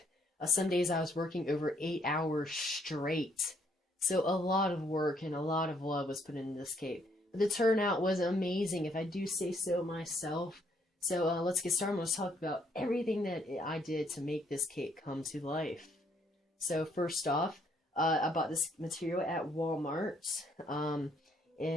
Some days I was working over 8 hours straight. So a lot of work and a lot of love was put into this cape. But the turnout was amazing, if I do say so myself. So let's get started. I'm going to talk about everything that I did to make this cape come to life. So first off, I bought this material at Walmart.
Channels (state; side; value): normal; both; correlation 0.69